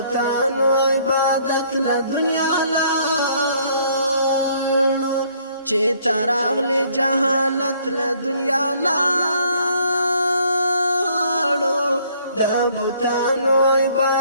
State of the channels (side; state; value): both; inverted; correlation -0.63